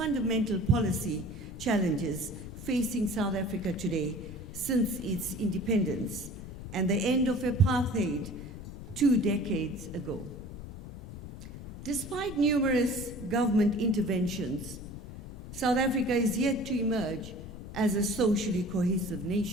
policy challenges facing South Africa today since its independence and the end of apartheid 2 decades ago. Despite numerous government interventions, South Africa is yet to emerge as a socially cohesive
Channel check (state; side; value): noise; left; rumble, 11 dB below the sound